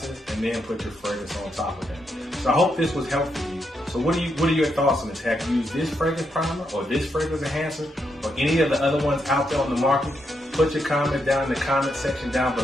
and then put your fragrance on top of that. So I hope this was helpful to you. So what are your thoughts on this? Have you used this fragrance primer or this fragrance enhancer or any of the other ones out there on the market? Put your comments down in the comment section down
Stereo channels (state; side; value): normal; both; correlation 0.81